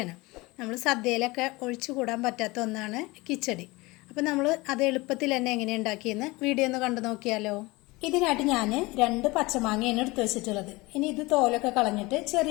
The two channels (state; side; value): quieter; right; 22.7 dB